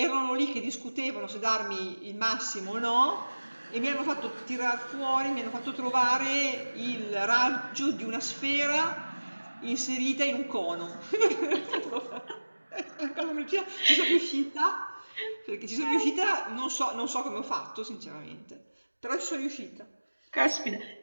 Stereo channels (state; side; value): inverted; both; correlation -1.00